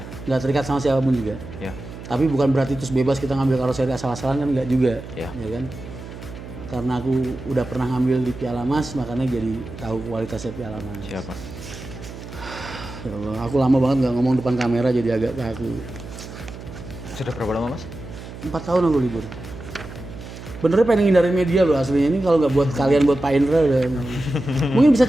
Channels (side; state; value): right; noise; hum, 13 dB below the sound